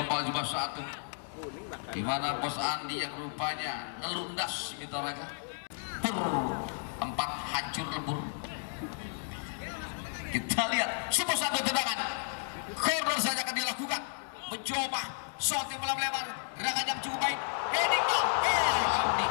cuma satu, di mana Bos Andi yang rupanya ngelundas Mitoraga empat hancur lebur. Kita lihat sebuah satu tendangan corner saja akan dilakukan. Mencoba shot yang lebar, gerakan yang cukup baik. Amdi.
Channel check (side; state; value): right; silent; digital silence